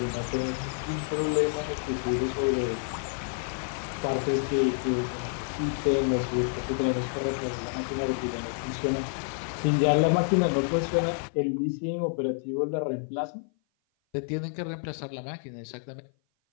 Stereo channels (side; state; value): right; silent; 55 dB below the other